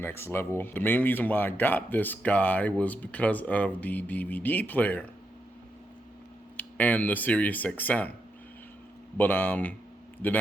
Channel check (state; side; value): normal; both; correlation 0.83